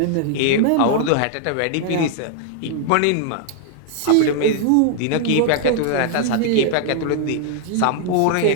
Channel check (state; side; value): different; both; correlation 0.00